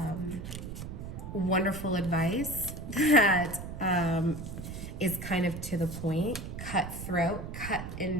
wonderful advice that is kind of to the point, cutthroat, cut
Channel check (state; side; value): noise; right; rumble, 8 dB below the sound